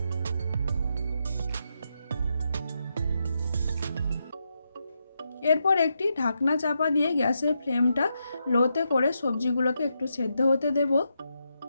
এরপর একটি ঢাকনা চাপা দিয়ে গ্যাসের ফ্লেমটা লোতে করে সবজিগুলোকে একটু সেদ্ধ হতে দেব।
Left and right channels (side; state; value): both; inverted; correlation -0.84